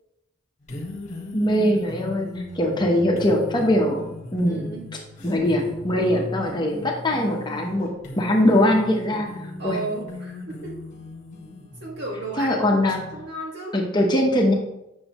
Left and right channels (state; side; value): normal; both; correlation 0.64